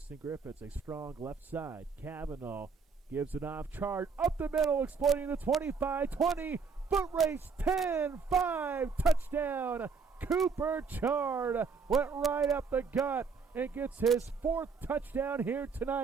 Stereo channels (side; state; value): left; quieter; 5.2 dB